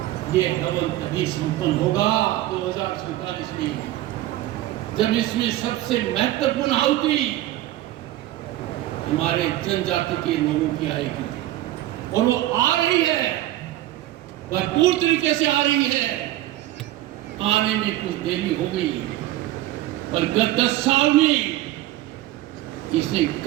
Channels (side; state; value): left; quieter; 15.3 dB